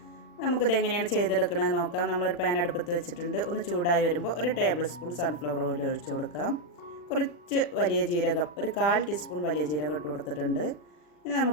നമുക്കിത് എങ്ങനെയാണ് ചെയ്തെടുക്കണമെന്ന് നോക്കാം. നമ്മളൊരു പാൻ അടുപ്പത്ത് വെച്ചിട്ടുണ്ട്. ഒന്ന് ചൂടായി വരുമ്പോൾ ഒരു ടേബിൾ സ്പൂൺ സൺഫ്ലവർ ഓയിൽ ഒഴിച്ചു കൊടുക്കാം. കുറച്ച് വലിയ ജീരകം, ഒരു 1/4 ടീസ്പൂൺ വലിയ ജീരകം ഇട്ട് കൊടുത്തിട്ടുണ്ട്. ഇനി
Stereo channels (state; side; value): late; right; 40 ms